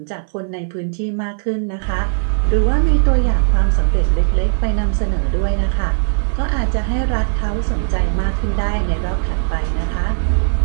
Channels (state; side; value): silent; left; 57 dB below the other